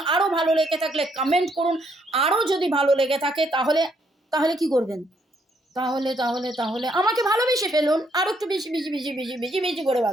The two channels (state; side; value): normal; both; correlation 0.72